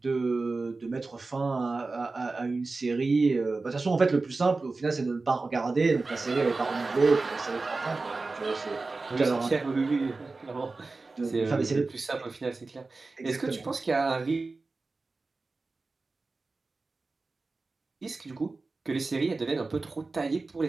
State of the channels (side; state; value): left; quieter; 3.7 dB